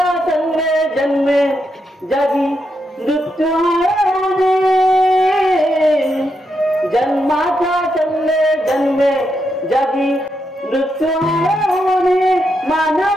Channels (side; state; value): both; normal; correlation 0.82